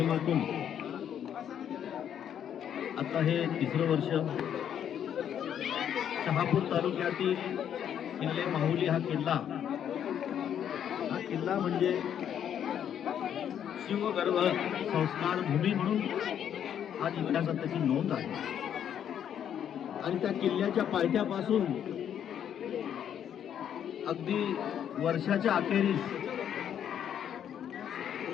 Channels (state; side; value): quieter; right; 9.3 dB